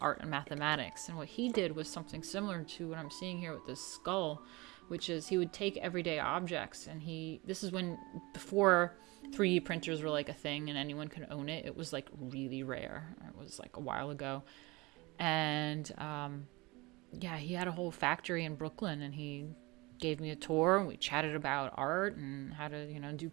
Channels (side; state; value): left; quieter; 23.6 dB